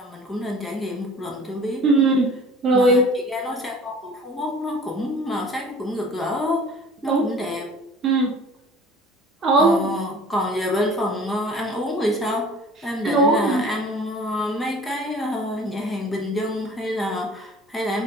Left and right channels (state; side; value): normal; both; correlation 0.46